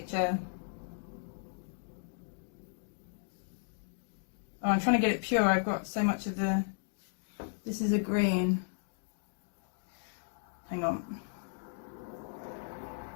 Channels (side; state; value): right; silent; digital silence